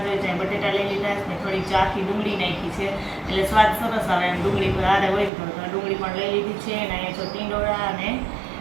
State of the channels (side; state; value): left; drops out; at 5.3 s